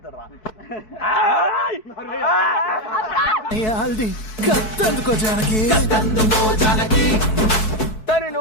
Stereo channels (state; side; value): late; right; 4.6 ms